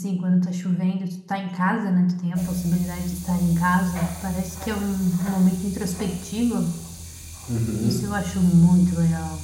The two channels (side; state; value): both; identical; correlation 1.00